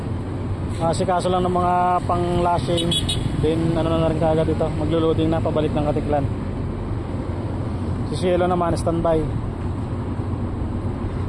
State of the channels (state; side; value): identical; both; correlation 1.00